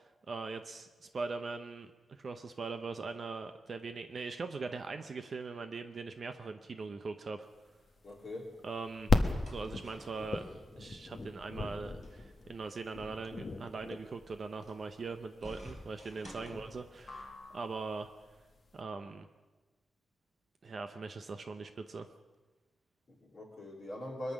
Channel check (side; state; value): both; normal; correlation 0.86